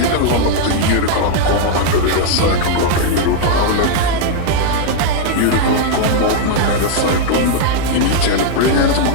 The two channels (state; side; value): different; both; correlation -0.01